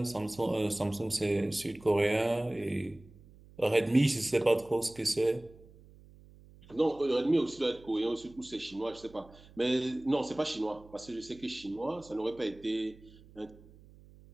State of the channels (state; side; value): noise; right; hum, 23 dB below the sound